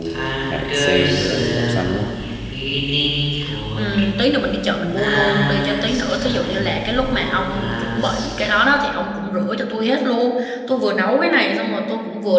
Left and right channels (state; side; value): identical; both; correlation 1.00